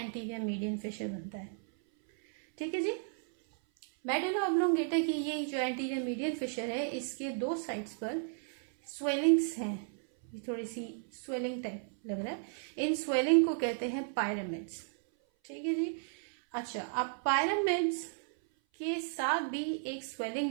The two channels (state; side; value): silent; left; 55 dB below the other